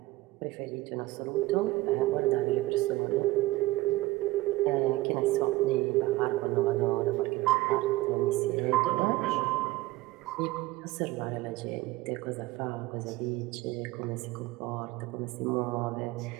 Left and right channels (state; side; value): quieter; left; 19.0 dB